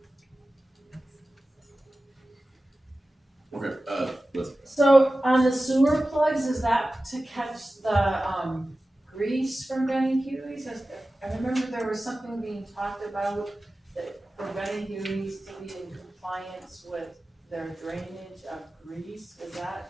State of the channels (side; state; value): both; normal; correlation 0.95